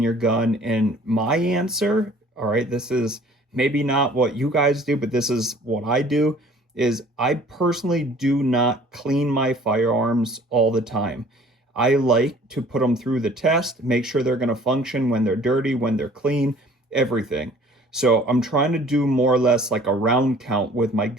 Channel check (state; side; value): normal; both; correlation 0.52